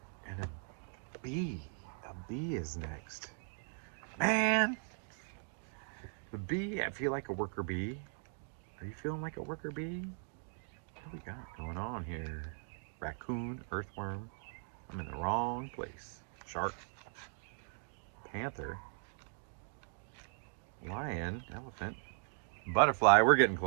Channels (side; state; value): left; silent; 52 dB below the other